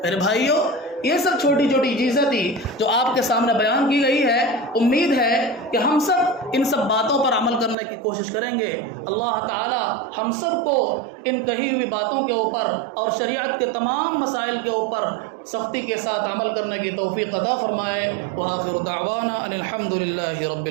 میرے بھائیوں، یہ سب چھوٹی چھوٹی چیزیں تھی جو آپ کے سامنے بیان کی گئی ہے۔ امید ہے کہ ہم سب ان سب باتوں پر عمل کرنے کی کوشش کریں گے۔ اللہ تعالی ہم سب کو ان کہی ہوئی باتوں کے اوپر اور شریعت کے تمام مسائل کے اوپر سختی کے ساتھ عمل کرنے کی توفیق عطا فرمائے۔ وآخر دعوانا ان الحمد للہ رب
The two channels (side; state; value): left; drops out; at 7.8 s